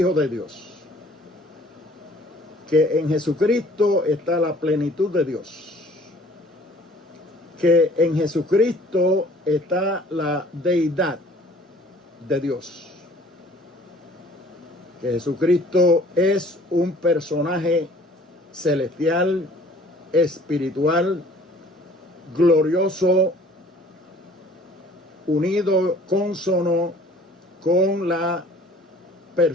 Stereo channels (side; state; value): both; normal; correlation 0.53